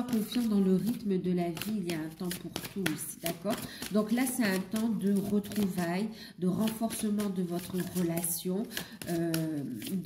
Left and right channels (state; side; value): identical; both; correlation 1.00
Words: confiant dans le rythme de la vie, il y a un temps pour tout ici, d'accord? Donc là, c'est un temps de retrouvailles, de renforcement de votre relation,